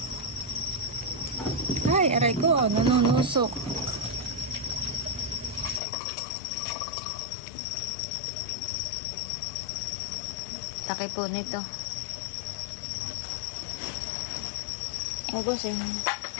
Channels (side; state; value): right; drops out; at 5.8 s